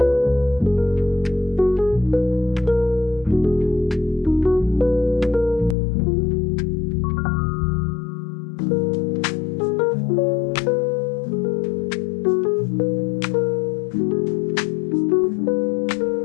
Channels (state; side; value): drops out; right; at 5.8 s